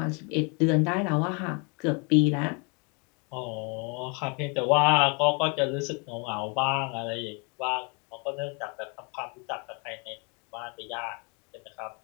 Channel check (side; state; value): right; quieter; 33.5 dB